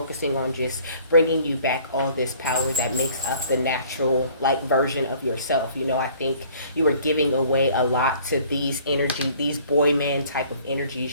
on just bringing you back all this power that makes up the natural like version of yourself. I think you are giving away a lot to these these boy man type of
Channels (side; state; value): both; inverted; correlation -0.55